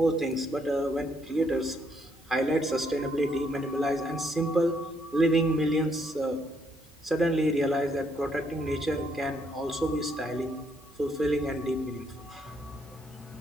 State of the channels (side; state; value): both; normal; correlation 0.72